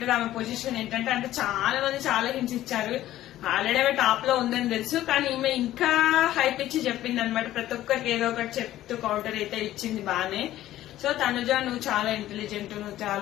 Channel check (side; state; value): right; quieter; 14.0 dB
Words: ఆమె పొజిషన్ ఏంటంటే. అంటే చాలా మంది చాలా హింట్స్ ఇచ్చారు. ఆల్రెడీ ఆమె టాప్ లో ఉందని తెలుసు, కానీ ఈమె ఇంకా హైప్ ఇచ్చి చెప్పింది అనమాట. ప్రతి ఒక్కరికి ఏదో ఒకటి చెప్తూ కౌంటర్ అయితే ఇచ్చింది బానే. సో తనుజ, నువ్వు చాలా ఇంటెలిజెంట్, నువ్వు